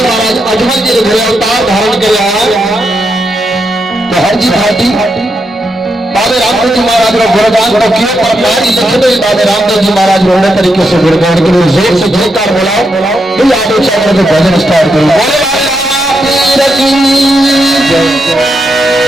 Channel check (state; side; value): normal; both; correlation 0.83